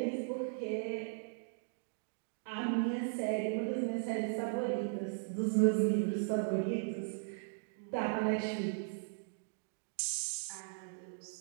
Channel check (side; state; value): left; silent; digital silence